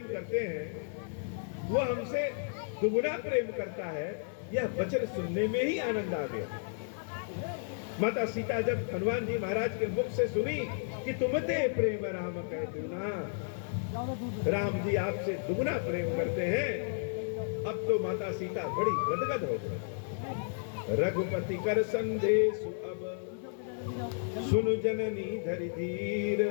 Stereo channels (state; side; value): silent; right; digital silence